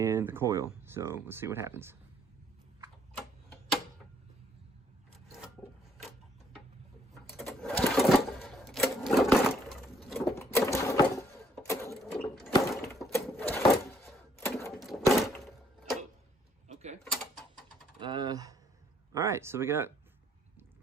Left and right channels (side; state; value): both; normal; correlation 0.66